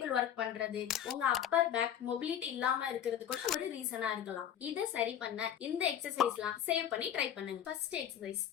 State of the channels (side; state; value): right; quieter; 9.8 dB